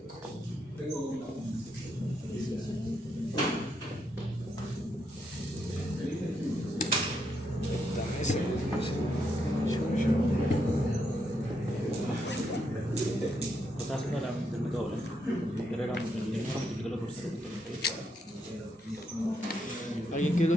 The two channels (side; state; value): both; normal; correlation 0.79